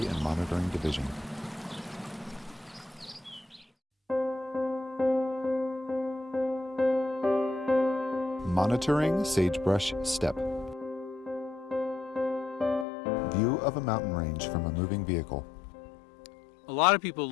and Monitoring Division. Monitoring Sagebrush Steppe. View of a mountain range from a moving vehicle. A lot of people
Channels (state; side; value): drops out; right; at 12.9 s